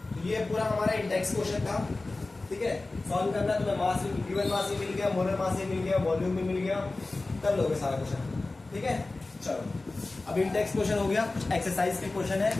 तो ये पूरा हमारा इंडेक्स क्वेश्चन था, ठीक है। सॉल्व करना है, तुम्हें मास गिवन मास ही मिल गया, मोलर मास ही मिल गया, वॉल्यूम भी मिल गया, कर लोगे सारा क्वेश्चन, ठीक है। चलो अब इंडेक्स क्वेश्चन हो गया। एक्सरसाइज के क्वेश्चन है,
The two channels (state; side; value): quieter; right; 3.2 dB